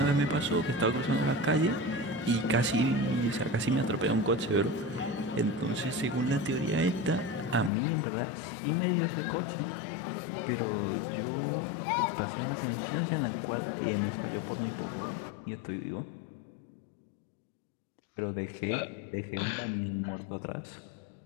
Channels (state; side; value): drops out; right; at 7.7 s